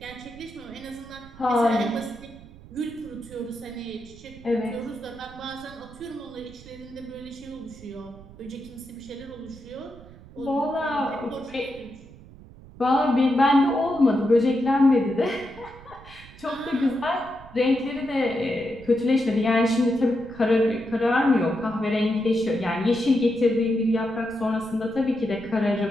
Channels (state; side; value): noise; right; rumble, 20 dB below the sound